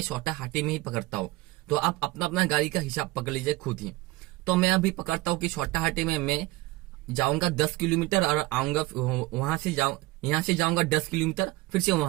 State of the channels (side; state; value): left; quieter; 20.1 dB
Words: छोटा हाथी में ही पकड़ता हूँ। तो आप अपना अपना गाड़ी का हिसाब पकड़ लीजिए खुद ही। तो मैं अभी पकड़ता हूँ कि छोटा हाथी में मैं जाऊंगा 10 किलोमीटर और आऊंगा वहां से यहाँ से जाऊंगा 10 किलोमीटर, फिर से